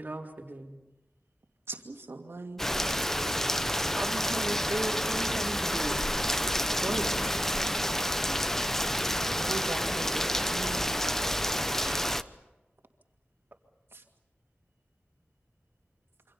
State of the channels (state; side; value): normal; both; correlation 0.87